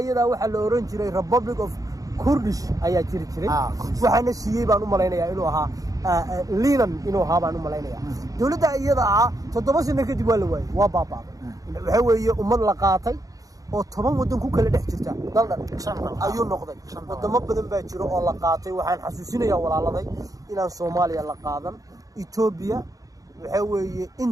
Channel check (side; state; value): left; late; 0.17 ms